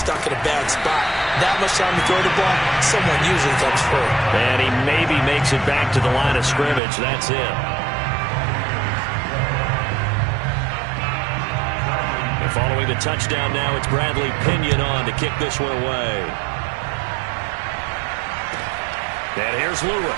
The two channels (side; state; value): left; drops out; at 6.8 s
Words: in a bad spot. That much time to throw the ball, someone usually comes free. And he maybe makes it back to the line of scrimmage. That's it. Following the touchdown now, it's Bradley Pinion on to kick this one away. And here's